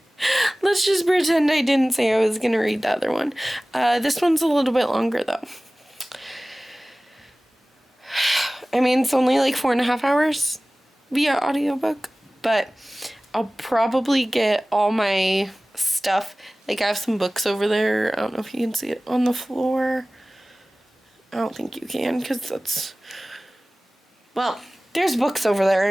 pretend I didn't say I was gonna read the other one. This one's a little bit longer though. I mean, it's only like 4.5 hours via audiobook, but I'll probably get all my stuff. Like, I have some books over there. I don't know if you can see it on the floor. I don't think you can, because that's, well, there's books over there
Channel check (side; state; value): both; normal; correlation 0.98